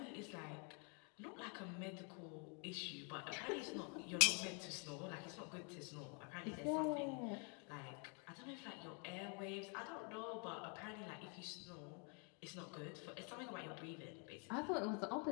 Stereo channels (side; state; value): right; quieter; 37.5 dB